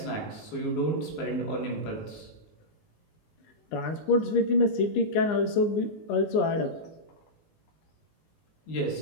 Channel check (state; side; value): late; right; 19 ms